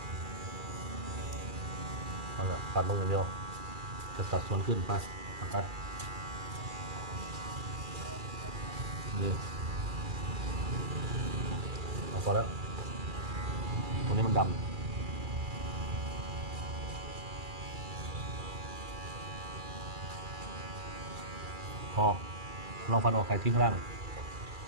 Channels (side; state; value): left; late; 2.4 ms